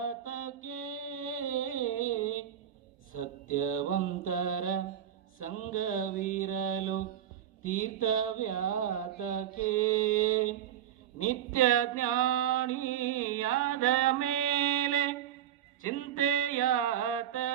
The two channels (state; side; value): quieter; left; 10.4 dB